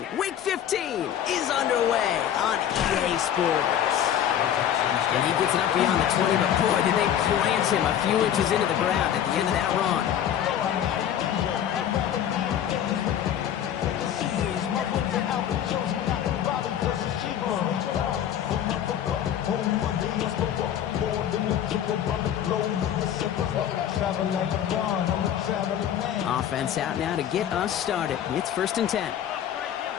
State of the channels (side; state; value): right; quieter; 10.1 dB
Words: Week 15 is underway on EA Sports. And he gets it up beyond the 20, but boy, did they plant him a few inches into the ground at the end of that run. Offense out now to get us started. It's 1st and 10.